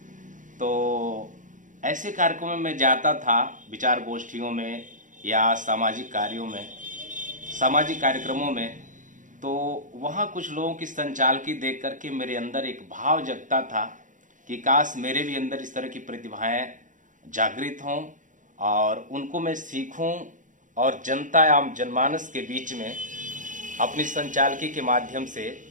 तो ऐसे कार्यक्रमों में जाता था, विचार गोष्ठियों में या सामाजिक कार्यों में, सामाजिक कार्यक्रमों में, तो वहाँ कुछ लोगों की संचालकी देख करके मेरे अंदर एक भाव जगता था कि काश मेरे भी अंदर इस तरह की प्रतिभाएं जागृत हों और उनको मैं सीखूं और जनता एवं जनमानस के बीच में अपनी संचालकी के माध्यम से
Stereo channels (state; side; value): late; left; 0.37 ms